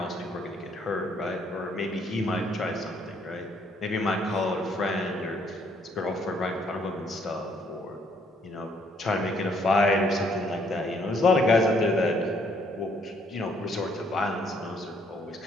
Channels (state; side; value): normal; both; correlation 0.67